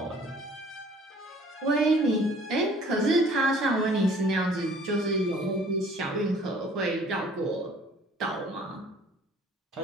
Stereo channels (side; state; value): both; normal; correlation 0.54